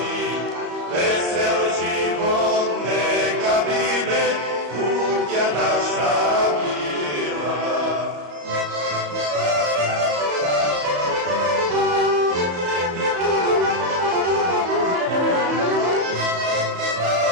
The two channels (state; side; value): late; left; 34 ms